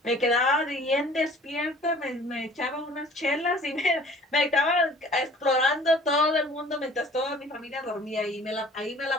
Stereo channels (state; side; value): normal; both; correlation 0.50